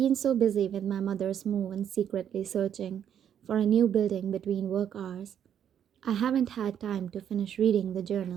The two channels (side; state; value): left; quieter; 9.2 dB